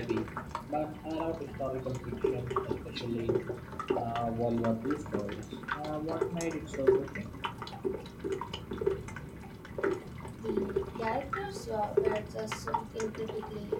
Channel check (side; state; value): both; identical; correlation 1.00